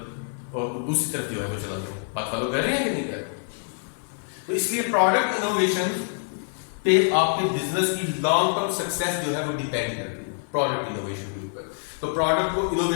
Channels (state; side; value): silent; right; 57 dB below the other